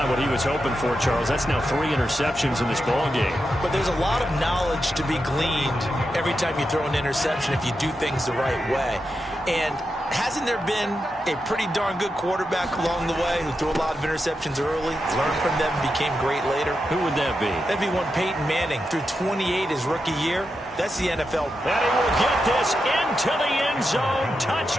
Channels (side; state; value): both; normal; correlation 0.87